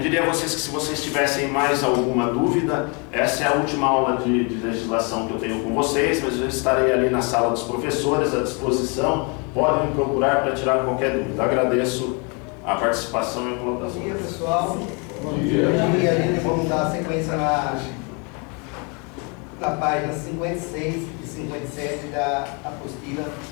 a vocês que, se vocês tivessem mais alguma dúvida, essa é a última aula de legislação que eu tenho com vocês, mas eu estarei ali na sala dos professores à disposição. Podem me procurar para tirar qualquer dúvida. Agradeço a participação e a colaboração. Bom dia, pessoal. Bom dia. Hoje a gente vamos dar sequência na página 56 e 57 da apostila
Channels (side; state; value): right; quieter; 33.2 dB